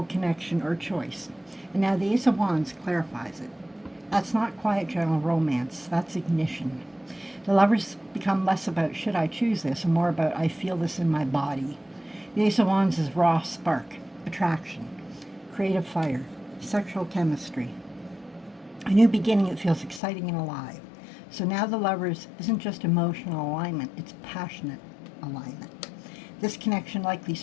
connection or choice. And now the Ace of Wands clarifies it. That's not quiet general romance. That's ignition. The Lovers become less about should I choose this and more about I feel this in my body. The Ace of Wands is raw spark, attraction, creative fire, sexual chemistry. A new beginning that feels exciting and alive. So now the Lovers isn't just emotional alignment, it's passionate alignment. This connection likely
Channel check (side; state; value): right; drops out; at 20.0 s